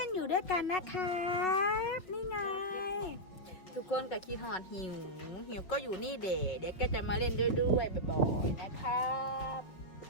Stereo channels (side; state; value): right; late; 5.6 ms